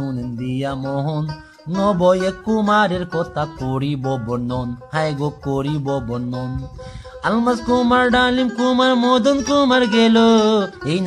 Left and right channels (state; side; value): identical; both; correlation 1.00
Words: দিয়া মোহন, নবয়ে কুমারের কথা করিব বর্ণন, হায় গো করিব বর্ণন। আলমাস কুমার, ডালিম কুমার, মদন কুমার গেল, এই